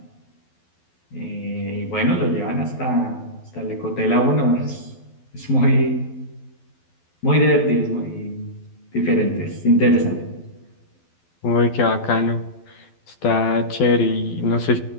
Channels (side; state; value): right; late; 12 ms